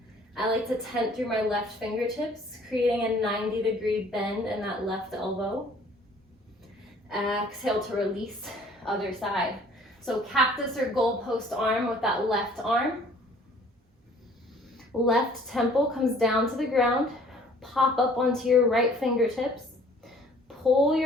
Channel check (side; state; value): both; normal; correlation 0.55